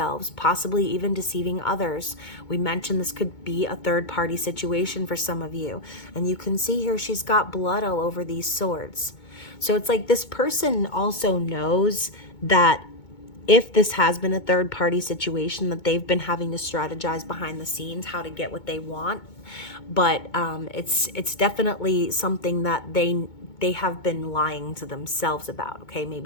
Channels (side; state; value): right; late; 2.2 ms